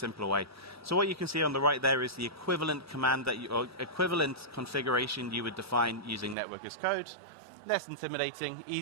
way. So what you can see on the right there is the equivalent command or equivalent configuration you would define using network as code. Less intimidating,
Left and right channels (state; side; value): drops out; left; at 6.4 s